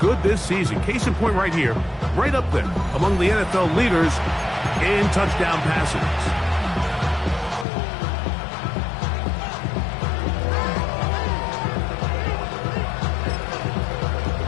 this season. Case in point right here, right up there among the NFL leaders in touchdown passes.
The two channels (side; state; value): right; drops out; at 7.7 s